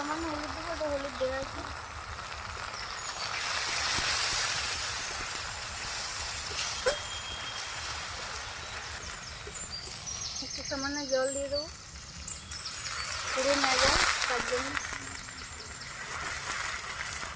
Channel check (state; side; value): identical; both; correlation 1.00